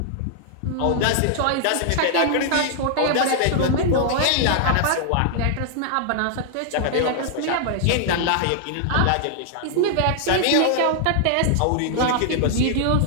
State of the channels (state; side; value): different; both; correlation -0.01